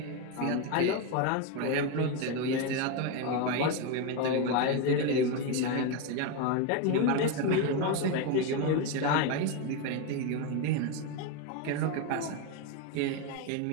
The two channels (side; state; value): both; different; correlation 0.03